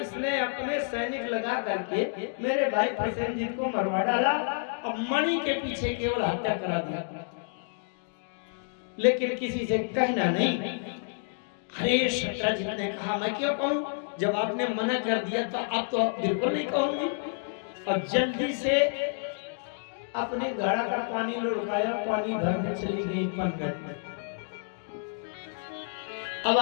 ने अपने सैनिक लगा करके मेरे भाई प्रसेनजित को मरवा डाला और मणि के पीछे केवल हत्या करा दिया, लेकिन किसी से कहना नहीं। अरे सत्राजित ने कहा, मैं क्यों कहूं? जब आपने मना कर दिया तो अब तो बिल्कुल नहीं कहूंगी। और जल्दी से अपने घड़ा का पानी लुढ़काया, पानी भरने चली गई पनघट में। अब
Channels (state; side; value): silent; right; digital silence